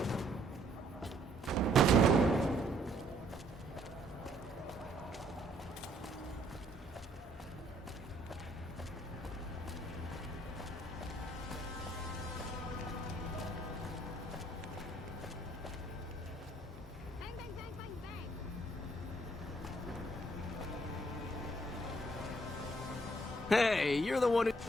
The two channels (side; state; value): both; normal; correlation 0.66